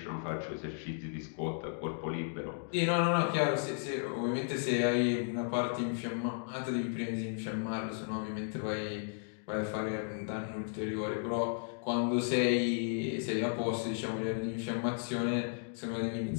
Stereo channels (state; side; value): silent; right; digital silence